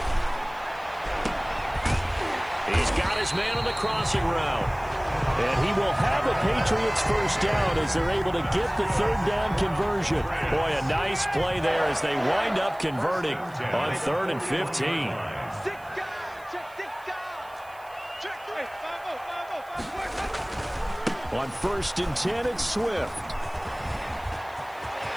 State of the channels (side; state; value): right; noise; hiss, 26 dB below the sound